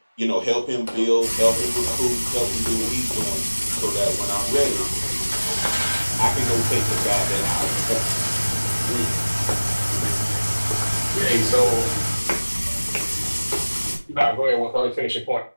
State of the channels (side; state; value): both; inverted; correlation -1.00